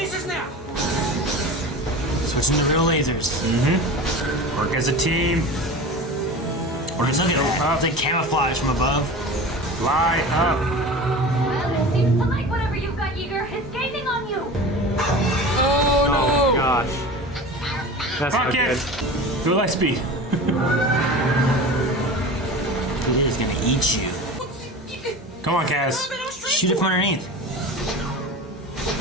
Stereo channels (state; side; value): normal; both; correlation 0.33